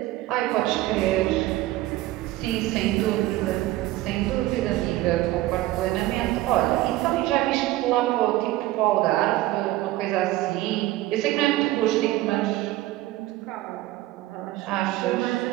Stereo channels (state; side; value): quieter; left; 16.7 dB